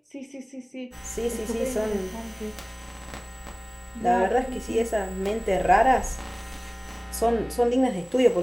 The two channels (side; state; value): both; identical; correlation 1.00